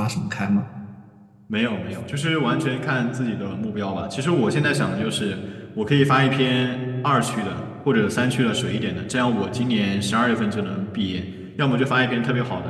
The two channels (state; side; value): identical; both; correlation 1.00